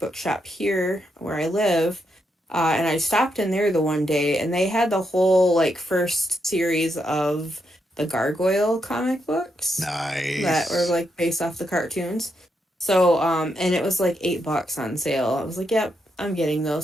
shop here where I live. And I stopped in there the one day, and they had the whole like first series of the Gargoyle comic books that were Nice. like based off the cartoons. So and it was like $8 on sale. I was like, yep, I'm getting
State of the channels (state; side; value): normal; both; correlation 0.81